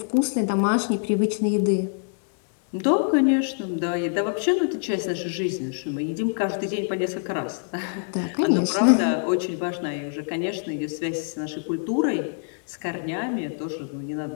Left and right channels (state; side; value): silent; right; digital silence